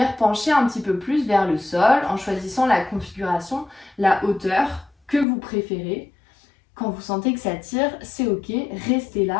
pencher un petit peu plus vers le sol en choisissant la configuration, la hauteur que vous préférez. Quand vous sentez que ça tire, c'est ok, restez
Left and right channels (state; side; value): drops out; right; at 5.2 s